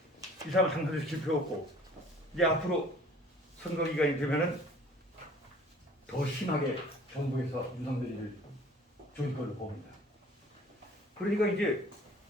이 사람을 당선시킬 필요 없고 이제 앞으로 선거 기간이 되면은 더 심하게 정부에서 윤석열이를 조일 걸로 봅니다. 그러니까 이제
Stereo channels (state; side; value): normal; both; correlation 0.51